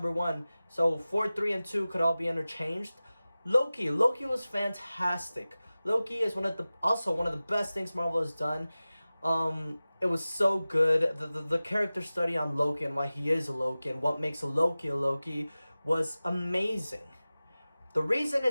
1. So 4, 3, and 2 could all be interchanged. Loki was fantastic. Loki is also one of the best things Marvel has done. It was so good. The character study on Loki and why he is a Loki and what makes a Loki was amazing. The reason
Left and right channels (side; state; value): both; inverted; correlation -0.97